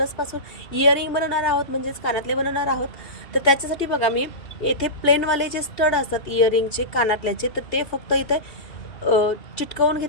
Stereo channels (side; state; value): right; late; 2.7 ms